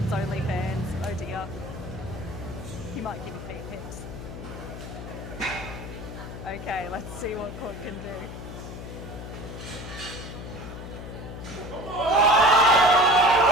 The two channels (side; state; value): left; noise; hum, 10 dB below the sound